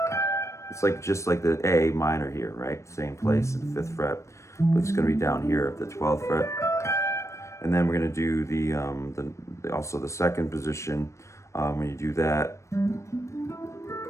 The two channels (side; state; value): right; late; 0.14 ms